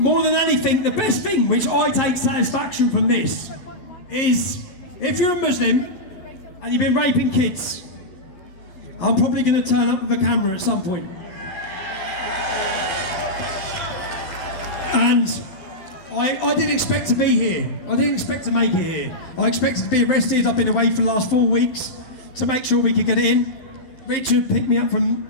than anything, the best thing which I take satisfaction from this is if you're a Muslim and you've been raping kids, I'm probably going to turn up with a camera at some point. And I didn't expect to be here. I didn't expect to make it here. I expected to be arrested. I've been away for the last 4 weeks to make sure we could get it in. Richard picked me up from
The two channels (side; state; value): right; late; 11 ms